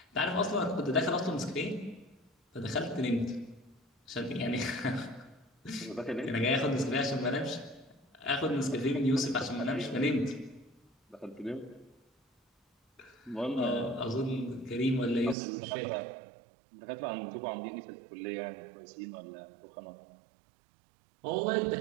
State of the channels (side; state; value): left; drops out; at 15.4 s